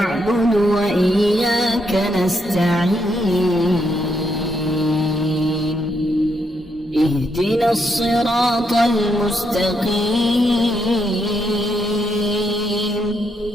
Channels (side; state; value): both; normal; correlation 0.78